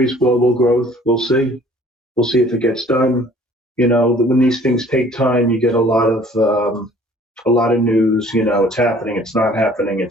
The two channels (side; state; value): both; normal; correlation 0.54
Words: global growth. We'll see. We'll see if it gets done. When these things take time, you get a lot of news, it's happening, it's not happening,